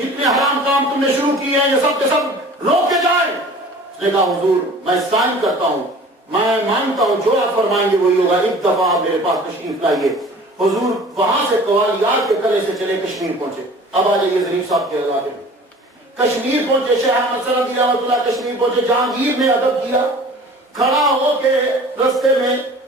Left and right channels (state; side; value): normal; both; correlation 0.45